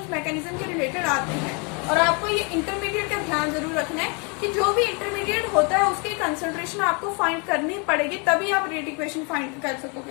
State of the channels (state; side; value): quieter; right; 33.7 dB